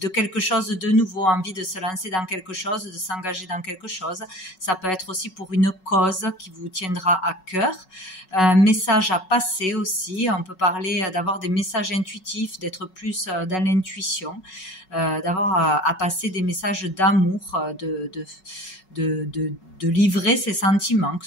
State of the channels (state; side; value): late; right; 5.3 ms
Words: quelque chose de nouveau, envie de se lancer dans quelque chose, de s'engager dans quelque chose. Ça peut être aussi pour une cause qui vous tiendra à cœur. Message à passer aussi. On peut parler d'avoir des messages intuitifs, d'être plus dans l'intuition, d'avoir à passer des messages d'amour, de livrer ses sentiments, que